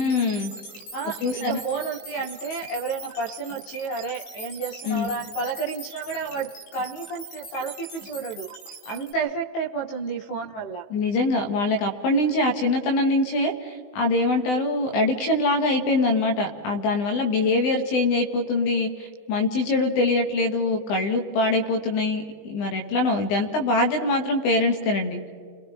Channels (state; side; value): late; right; 19 ms